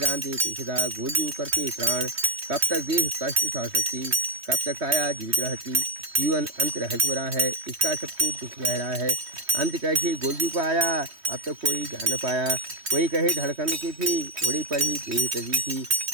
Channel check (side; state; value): left; late; 3.2 ms